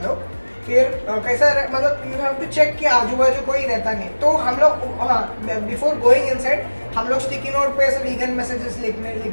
लोग, फिर कैसा मतलब यू हैव टू चेक कि आजू बाजू कोई रहता नहीं, तो हम लोग, हाँ, बिफोर गोइंग इनसाइड हम लोग स्टिकी नोट पे ऐसे वीगन मैसेजेस लिख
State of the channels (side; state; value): both; inverted; correlation -1.00